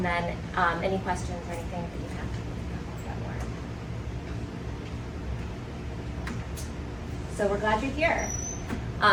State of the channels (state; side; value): identical; both; correlation 1.00